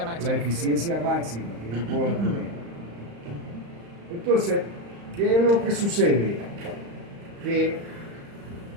la máxima. eficiencia máxima que yo puedo tener. Entonces, ¿qué es lo que sucede? Que,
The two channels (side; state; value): left; late; 35 ms